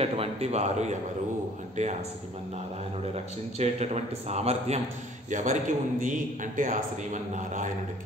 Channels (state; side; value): normal; both; correlation 0.54